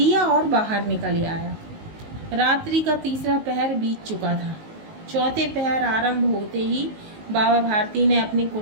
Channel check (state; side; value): late; left; 19 ms